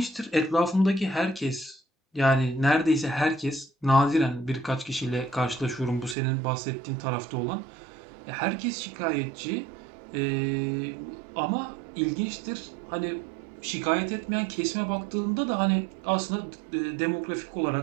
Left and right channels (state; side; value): drops out; left; at 6.2 s